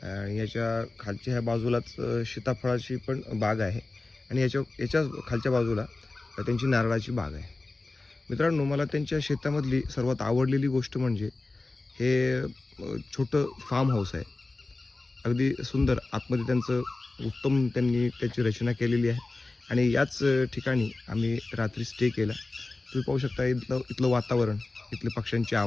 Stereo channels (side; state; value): right; quieter; 3.3 dB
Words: आणि याच्या खालच्या ह्या बाजूलाच सीताफळाची पण बाग आहे आणि याच्या खालच्या बाजूला त्यांची नारळाची बाग आहे. मित्रांनो, मला त्यांच्या शेतामधली सर्वात आवडलेली गोष्ट म्हणजे हे छोटं फार्म हाऊस आहे. अगदी सुंदर आतमध्ये त्यांचं उत्तम त्यांनी त्याची रचना केलेली आहे आणि याच ठिकाणी आम्ही रात्री स्टे केला. तुम्ही पाहू शकता इथलं वातावरण, इथले पक्ष्यांचे